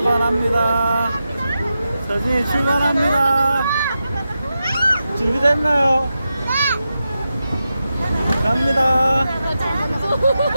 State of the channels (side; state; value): both; inverted; correlation -0.90